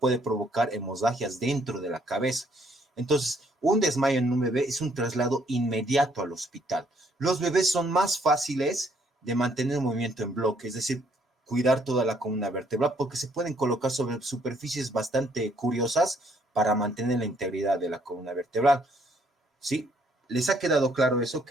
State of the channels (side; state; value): both; normal; correlation 0.67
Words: provocar hemorragias dentro de la cabeza. Entonces, un desmayo en un bebé es un traslado inmediato al hospital. Los bebés son más fáciles de mantener un movimiento en bloque, es decir, cuidar toda la columna vertebral, porque se pueden colocar sobre superficies bastante curiosas para mantener la integridad de la columna vertebral. ¿Sí? ¿Les ha quedado claro eso,